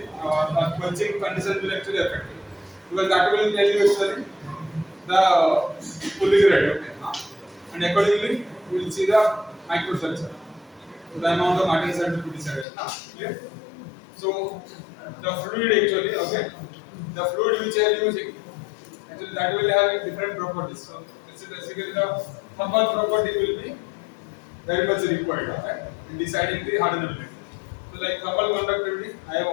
quenching condition will actually affect it, because that will tell you actually the cooling rate, okay? And accordingly we will see the microstructure. So the amount of martensite will be decided. Clear? So the fluid actually, okay, the fluid which I am using, actually that will have different properties. So this is basically the thermal property will be very much required, okay, in deciding the hardenability. So like thermal conductivity, I have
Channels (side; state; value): right; drops out; at 12.7 s